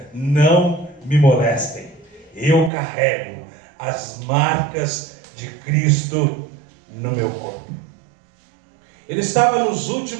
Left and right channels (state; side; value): drops out; left; at 2.7 s